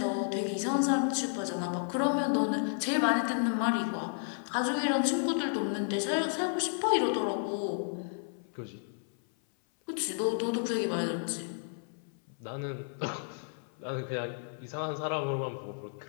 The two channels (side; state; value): right; silent; 56 dB below the other